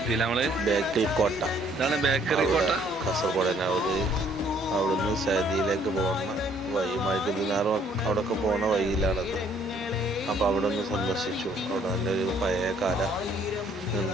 ഇതാണ് ബേക്കറി കോട്ട. കാസർഗോഡ് തന്നെ. അവിടുന്ന് സൗദിയിലേക്ക് പോകുന്ന വഴി മൈക്കുദിനാറും അവിടെയൊക്കെ പോകുന്ന വഴിയിലാണത്. അപ്പോൾ അവിടെ ഒന്ന് സന്ദർശിച്ചു. അവിടെ നല്ലൊരു പഴയ കാല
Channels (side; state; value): both; normal; correlation 0.63